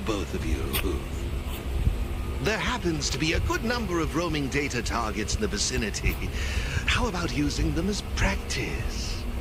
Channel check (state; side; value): identical; both; correlation 1.00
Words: both of you. There happens to be a good number of roaming data targets in the vicinity. How about using them as practice?